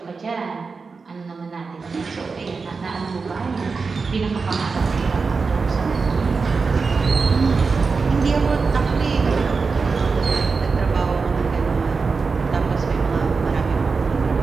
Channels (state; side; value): quieter; left; 4.7 dB